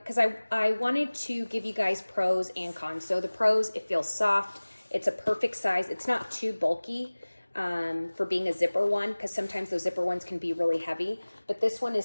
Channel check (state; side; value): inverted; both; correlation -1.00